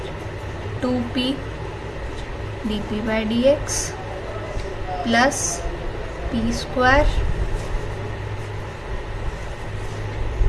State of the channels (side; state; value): both; identical; correlation 1.00